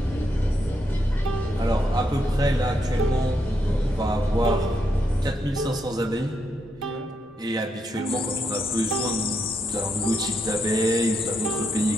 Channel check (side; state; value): both; normal; correlation 0.80